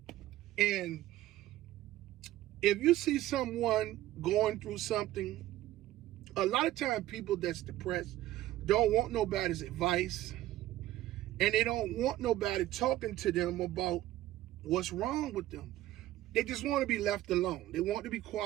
And if you see someone going through something, a lot of times people that's depressed don't want nobody's advice, and they don't want nobody talking to them about what's wrong with them. They just want to be left alone. They want to be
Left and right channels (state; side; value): quieter; left; 14.8 dB